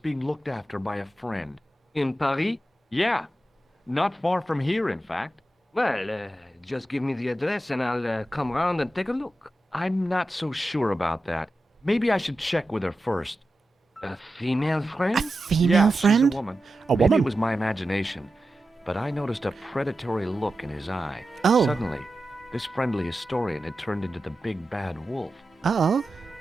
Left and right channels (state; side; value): normal; both; correlation 0.91